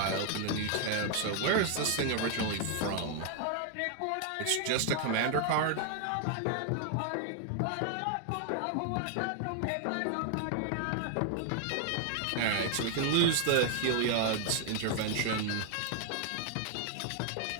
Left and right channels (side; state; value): both; different; correlation 0.00